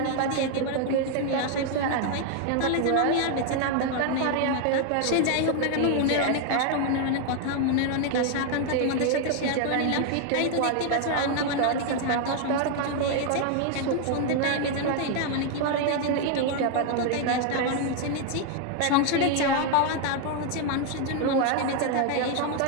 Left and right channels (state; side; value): different; both; correlation 0.00